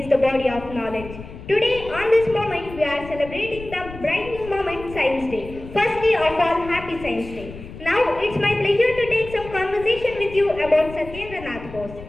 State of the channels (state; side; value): noise; left; rumble, 14 dB below the sound